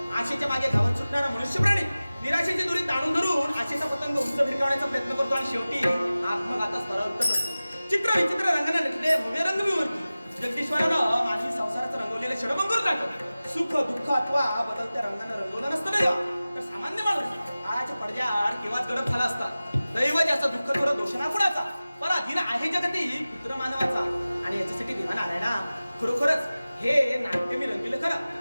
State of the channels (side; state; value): both; inverted; correlation -0.97